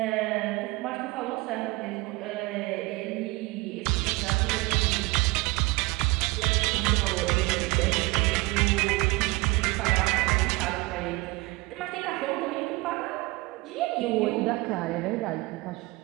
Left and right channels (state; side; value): quieter; left; 23.3 dB